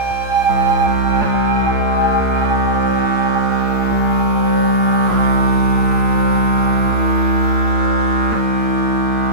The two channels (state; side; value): late; left; 8.9 ms